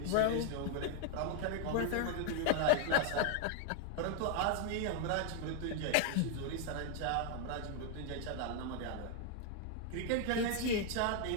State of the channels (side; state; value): both; different; correlation 0.00